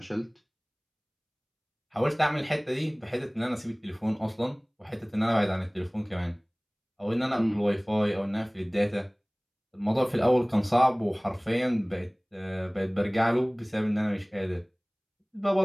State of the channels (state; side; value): identical; both; correlation 1.00